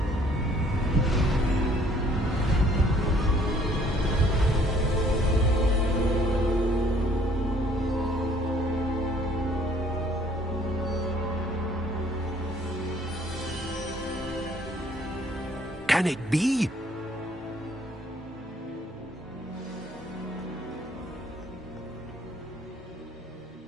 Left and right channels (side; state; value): both; normal; correlation 0.60